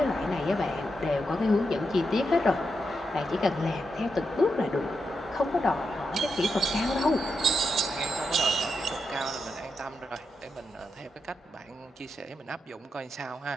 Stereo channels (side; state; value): both; normal; correlation 0.85